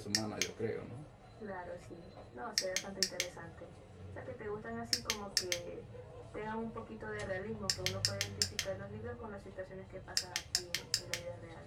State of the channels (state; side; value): identical; both; correlation 1.00